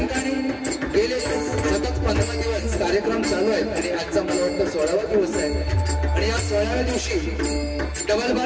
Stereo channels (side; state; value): both; identical; correlation 1.00